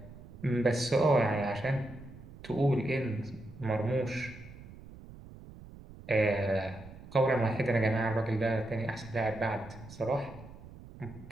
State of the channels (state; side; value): noise; right; rumble, 17 dB below the sound